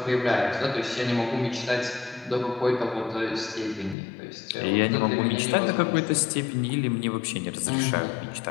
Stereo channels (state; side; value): drops out; right; at 4.0 s